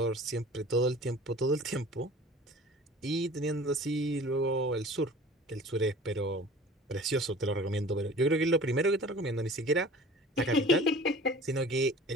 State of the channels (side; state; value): both; normal; correlation 0.44